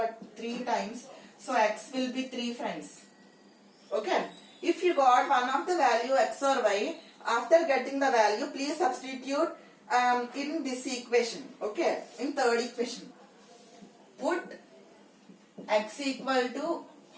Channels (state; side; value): identical; both; correlation 1.00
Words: 3 times. So x will be 3 friends. Okay. If you got one of the value x or y, after getting the value, please substitute in this equation. Okay. In third equation. Put x equal to